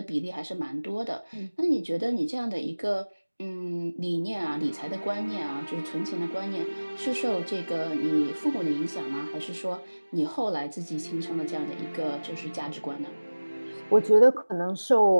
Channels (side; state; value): both; inverted; correlation -1.00